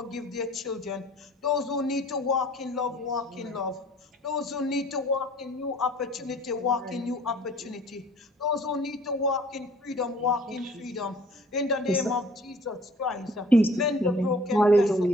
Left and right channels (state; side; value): normal; both; correlation 0.52